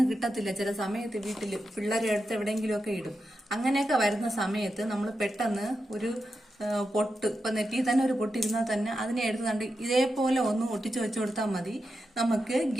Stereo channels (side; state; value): both; normal; correlation 0.88